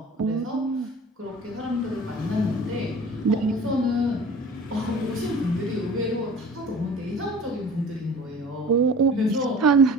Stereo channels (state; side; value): normal; both; correlation 0.43